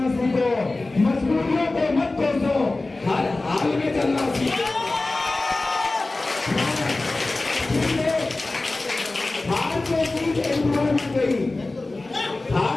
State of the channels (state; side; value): quieter; right; 3.1 dB